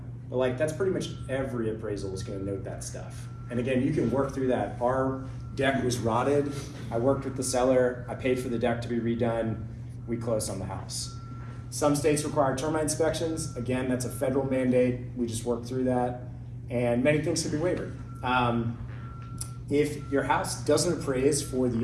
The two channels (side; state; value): both; identical; correlation 1.00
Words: But like that's pretty much every appraisal is going to note that stuff. And again, you can work through that. Our deck was rotted. I worked with the seller. I paid for the deck to be redone. We closed on the house. Some states require termite inspections. Again, that's a federal mandate. We just worked through that. And many things can be waived. If your house doesn't appraise for